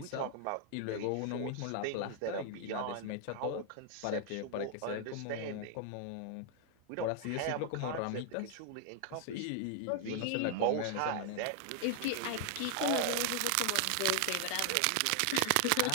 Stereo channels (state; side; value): different; both; correlation 0.00